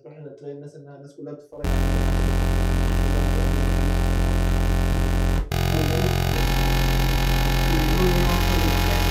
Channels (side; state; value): both; identical; correlation 1.00